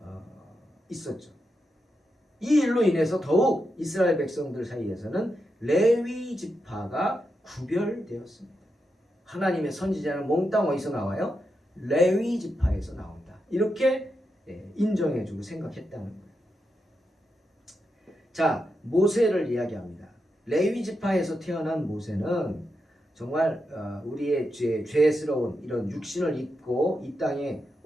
있었죠. 이 일로 인해서 더욱 이스라엘 백성들 사이에서는 레위 지파가 구별되었습니다. 하나님의 선지자는 몽땅 어디서 나와요? 레위 지파에서 나온다. 이렇게 인정해주고 생각했다는 거예요. 자, 모세를 이야기합니다. 레위 지파에서 태어난 모세는 정말 우리의 죄스러운 이런 육신을 입고 이 땅에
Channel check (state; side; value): normal; both; correlation 0.86